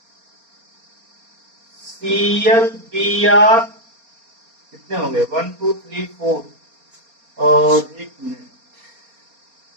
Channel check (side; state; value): left; late; 4.3 ms